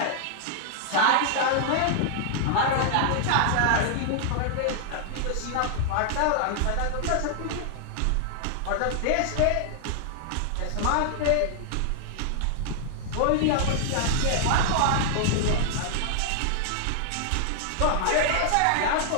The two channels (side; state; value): both; different; correlation -0.01